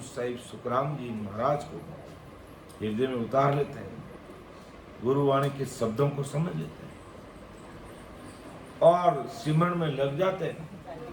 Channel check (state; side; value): identical; both; correlation 1.00